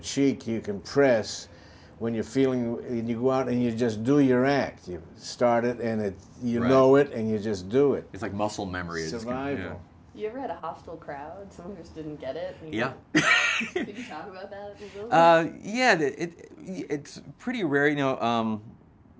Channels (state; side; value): identical; both; correlation 1.00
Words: you can press when you're feeling, and you go out and you just do your act. You start it and you know it, and you just do it. It's like muscle memory. Survival. You ever had a hostile crowd? Someone who just didn't get it? Yeah. Could you talk about that a little bit? Yeah, it's pretty rare. I